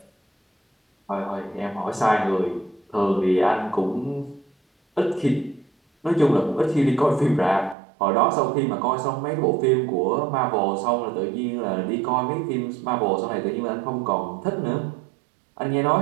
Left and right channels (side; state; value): left; drops out; at 7.8 s